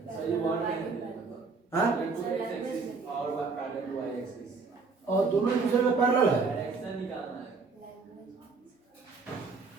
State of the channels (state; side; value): quieter; left; 4.5 dB